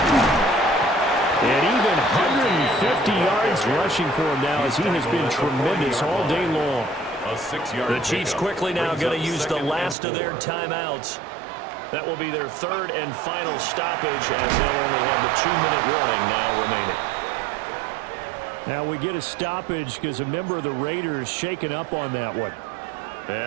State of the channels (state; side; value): drops out; left; at 10.0 s